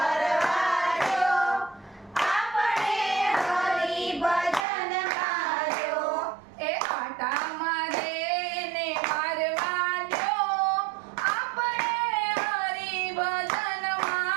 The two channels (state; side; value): drops out; left; at 4.7 s